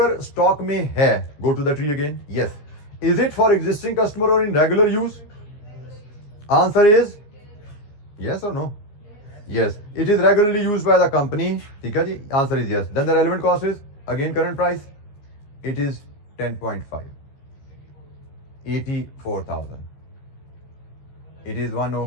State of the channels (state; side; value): late; right; 14 ms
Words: स्टॉक में है, go to the tree again, yes. Is it for existing customer or in regular use? Answer is yes or no? Yes, it is regularly used by the company. ठीक है जी, answer is yes. Then the relevant cost is again current price. It is 10.5. 84,000. It is